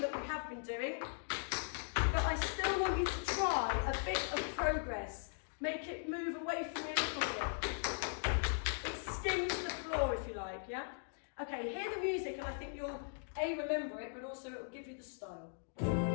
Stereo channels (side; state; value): right; silent; digital silence